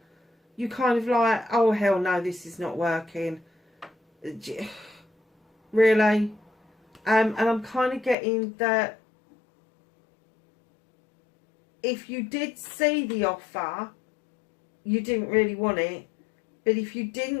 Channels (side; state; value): right; drops out; at 8.2 s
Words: You kind of like, oh hell no, this is not working. Really? And I'm kind of getting that if you did see the offer, you didn't really want it. But if you